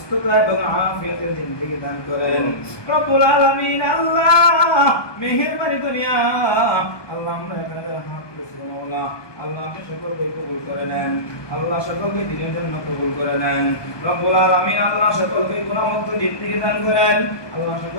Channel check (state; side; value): late; right; 1.2 ms